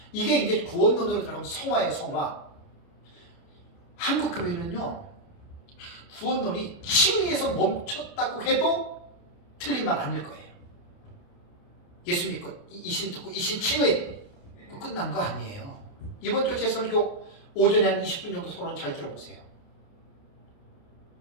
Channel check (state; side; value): late; right; 29 ms